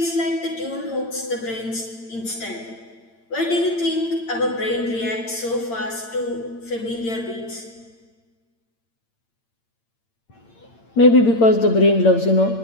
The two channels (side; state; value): right; late; 8.8 ms